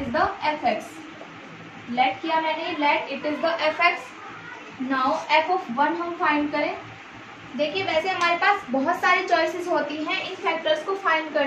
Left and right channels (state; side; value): identical; both; correlation 1.00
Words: the fx, let किया मैंने, let it is the fx। Now f(1) हम फाइंड करें। देखिए वैसे हमारे पास बहुत सारी चॉइसेस होती हैं इन फैक्टर्स को फाइंड